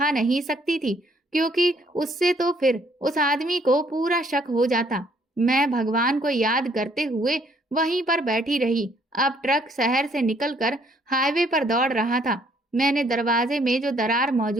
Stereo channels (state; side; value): normal; both; correlation 0.65